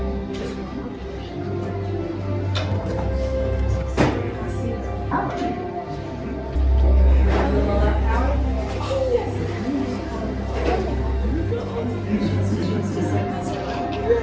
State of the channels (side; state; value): both; identical; correlation 1.00